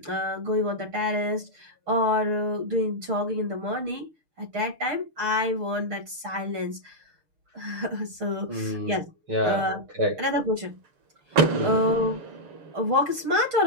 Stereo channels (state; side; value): late; left; 6.7 ms